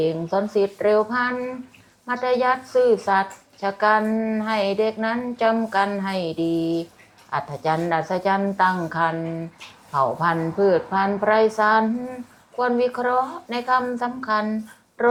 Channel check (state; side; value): identical; both; correlation 1.00